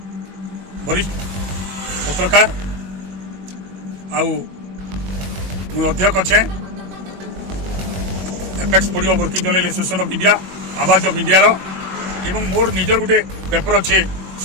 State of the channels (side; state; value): left; late; 21 ms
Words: वरिष्ठ पत्रकार अध्यक्ष अच्छे एपेक्स पढ़ियो working journalist association of India आवाज ऑफ इंडिया एवं मोर निजर गोटे पेपर अच्छे